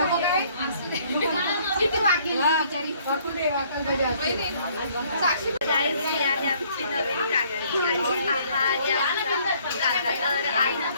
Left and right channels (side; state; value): both; inverted; correlation -0.62